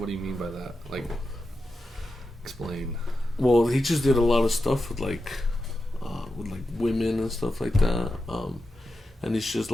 do you mean by that? Like, explain. Well, he just did a lot of stuff with women and stuff like that. And it's just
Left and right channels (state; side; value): normal; both; correlation 0.89